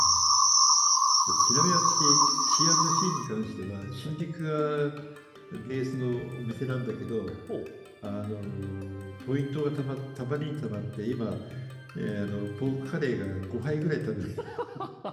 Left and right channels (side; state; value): both; identical; correlation 1.00